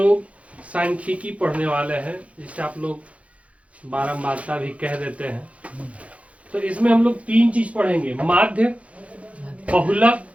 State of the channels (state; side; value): late; left; 0.064 ms